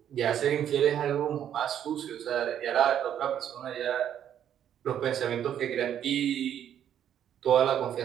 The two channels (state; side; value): quieter; left; 9.8 dB